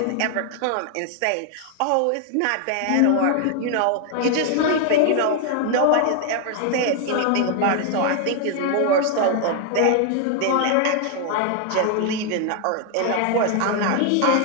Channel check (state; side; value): different; both; correlation 0.00